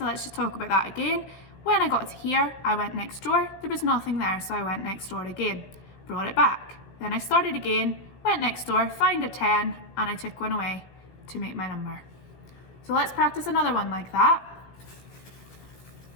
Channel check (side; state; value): right; late; 17 ms